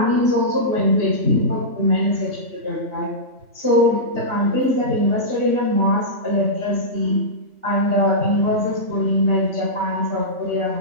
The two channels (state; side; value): late; left; 3.4 ms